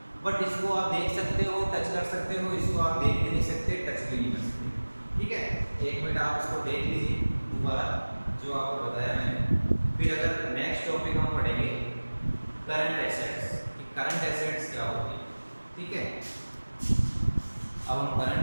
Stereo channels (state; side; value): inverted; both; correlation -1.00